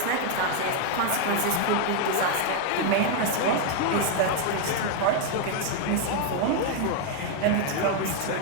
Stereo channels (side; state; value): both; different; correlation 0.00